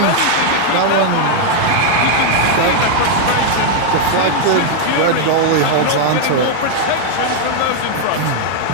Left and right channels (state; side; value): different; both; correlation 0.00